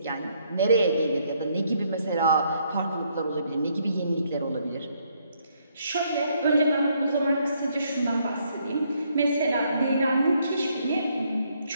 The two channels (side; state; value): both; inverted; correlation -0.71